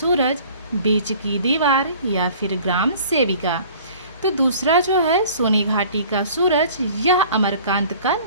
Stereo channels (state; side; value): inverted; both; correlation -0.49